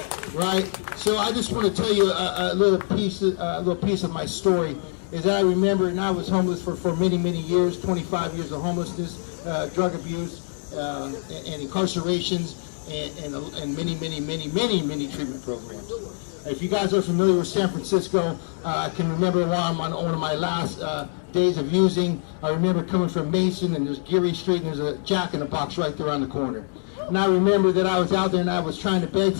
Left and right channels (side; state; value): right; silent; 62 dB below the other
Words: right? So I just want to tell you a little piece of my story. Is that I remember, and I was homeless for many, many years, 25 years of homelessness, drug abuse, and incarcerations. And many treatment programs. If you guys are familiar with San Francisco, I can remember while I'm on one of my last days of using, I remember coming from Mason, and there's Geary Street, and there's a Jack in the Box right there on the corner. And I remember that I was out there and I was trying to beg